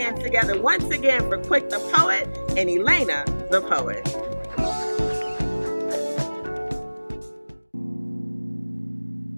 together once again for Quick the Poet and Elaina the Poet.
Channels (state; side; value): inverted; both; correlation -1.00